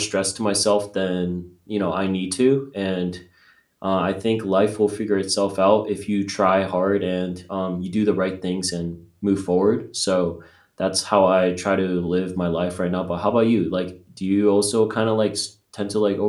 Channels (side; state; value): both; identical; correlation 1.00